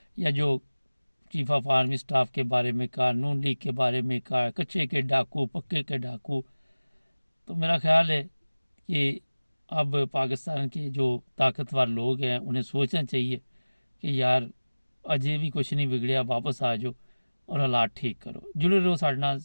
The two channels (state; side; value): inverted; both; correlation -1.00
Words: या जो चीफ ऑफ आर्मी स्टाफ के बारे में कहा, नून लीग के बारे में कहा, कच्चे के डाकू पक्के के डाकू, तो मेरा ख्याल है कि अब पाकिस्तान के जो ताकतवर लोग हैं उन्हें सोचना चाहिए कि यार अजय भी कुछ नहीं बिगड़िया, वापस आ जाओ और हालात ठीक करो। जुड़े रहो, साढ़े नाल